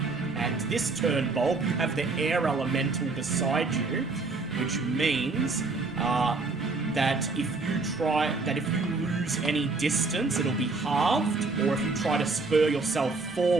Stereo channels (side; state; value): left; quieter; 3.8 dB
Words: And this turn, Bulb, you have the air elemental beside you, which means that if you lose any distance, it'll be halved, or if you try to spur yourself